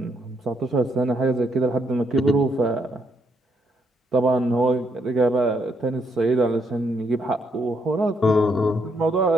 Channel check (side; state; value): both; normal; correlation 0.75